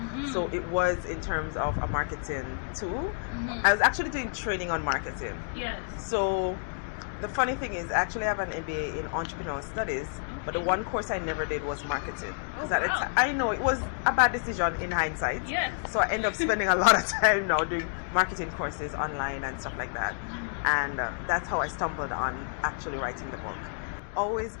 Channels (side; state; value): right; silent; digital silence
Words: So it was in terms of a marketing tool. I was actually doing training on marketing. Yes. So the funny thing is, I actually have an MBA in entrepreneurial studies, but the one course I never did was marketing. I know it was a bad decision in hindsight. Yes. So I end up spending a lot of time now doing marketing courses online and stuff like that. And that's how I stumbled on actually writing the book. Always